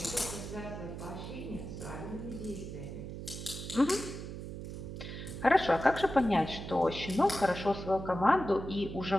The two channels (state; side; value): noise; right; hum, 8 dB below the sound